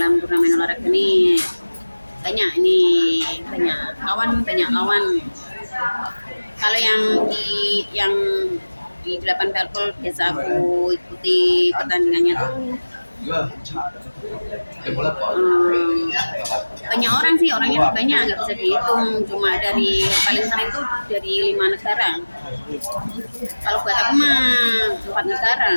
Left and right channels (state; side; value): inverted; both; correlation -1.00